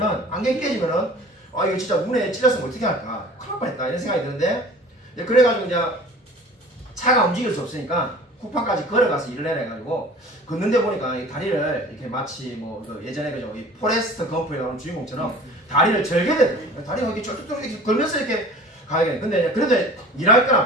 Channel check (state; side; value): normal; both; correlation 0.43